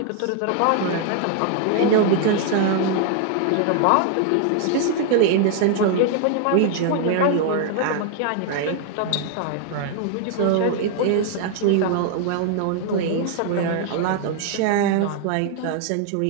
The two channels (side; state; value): both; different; correlation 0.00